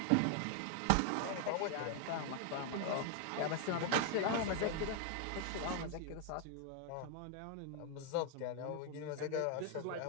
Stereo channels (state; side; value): different; both; correlation 0.00